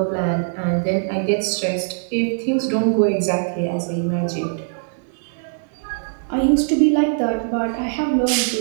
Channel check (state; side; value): silent; left; digital silence